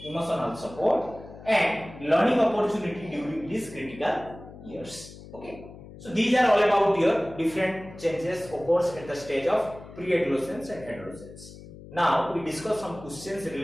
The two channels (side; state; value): left; noise; hum, 17 dB below the sound